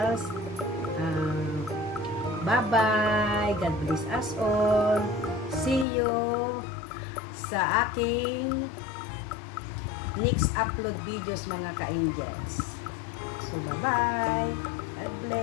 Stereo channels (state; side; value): drops out; right; at 5.9 s